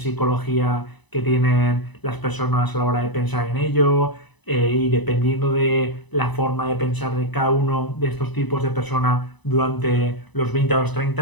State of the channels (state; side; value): late; right; 1.0 ms